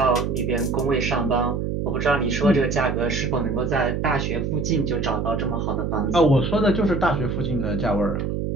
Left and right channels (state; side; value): noise; right; hum, 1 dB below the sound